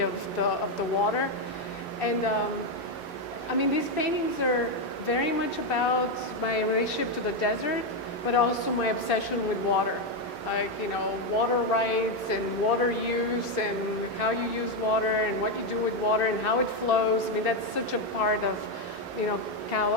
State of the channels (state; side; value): normal; both; correlation 0.05